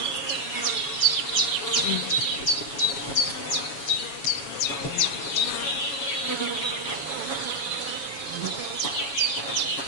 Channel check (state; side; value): late; right; 7.2 ms